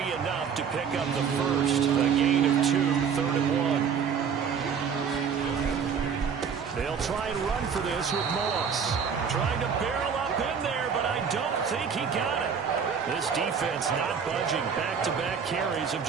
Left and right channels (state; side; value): quieter; left; 6.7 dB